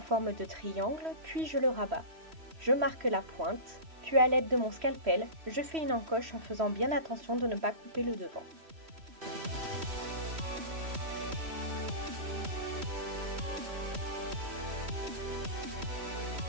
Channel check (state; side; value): late; left; 3.1 ms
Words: de triangle, puis je le rabats. Je marque la pointe, puis à l'aide de mon scalpel, je fais une encoche en faisant bien attention de ne pas couper le devant.